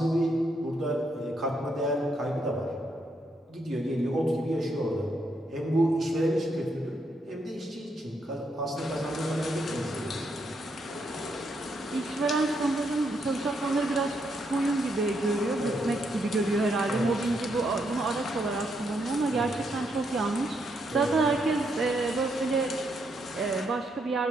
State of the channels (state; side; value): normal; both; correlation 0.77